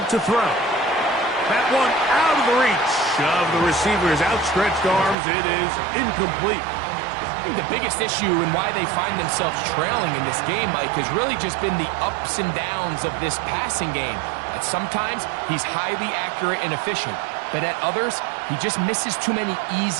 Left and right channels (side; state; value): left; drops out; at 5.2 s